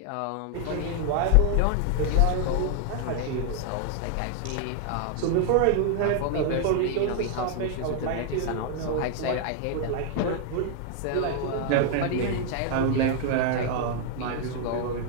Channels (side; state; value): both; different; correlation 0.00